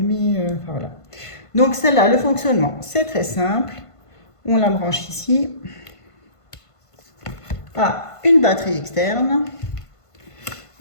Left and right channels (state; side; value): late; right; 1.5 ms